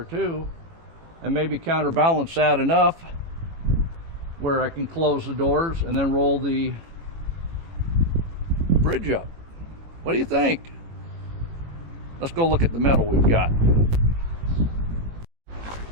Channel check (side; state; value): left; late; 18 ms